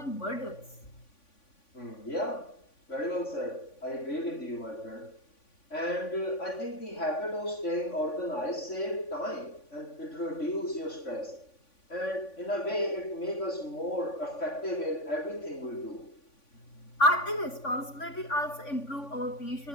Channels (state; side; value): late; right; 3.5 ms